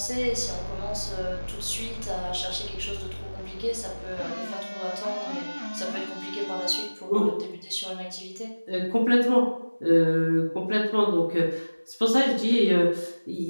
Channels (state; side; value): inverted; both; correlation -1.00